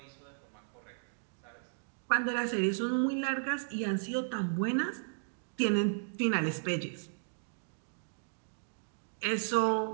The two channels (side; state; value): left; silent; digital silence